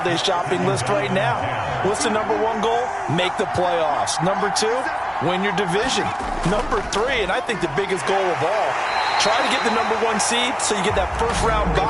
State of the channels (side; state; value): both; identical; correlation 1.00